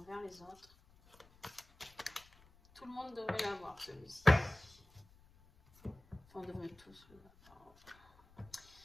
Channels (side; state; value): left; noise; rumble, 26 dB below the sound